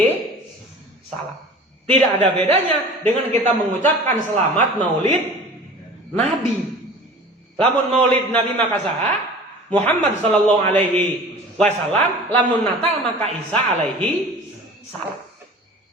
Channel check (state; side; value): normal; both; correlation 0.41